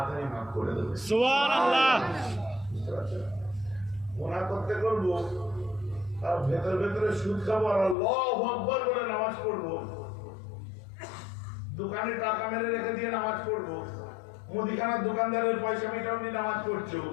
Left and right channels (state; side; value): drops out; right; at 8.0 s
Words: মাফ করে দেবে। সুবহানাল্লাহ। গুনাহ করতে করবো, আর ভেতর ভেতরে সুদ খাবো, আর আল্লাহু আকবার বলে নামাজ পড়বো, দোকানে টাকা মেরে রেখে দিয়ে নামাজ পড়বো, মুদিখানার দোকানদারের পয়সা মিটাও নিয়ে নামাজ পড়ছো,